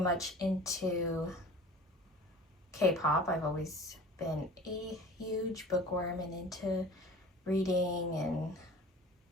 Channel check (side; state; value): both; normal; correlation 0.42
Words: into K-pop. I've always been a huge bookworm and into reading and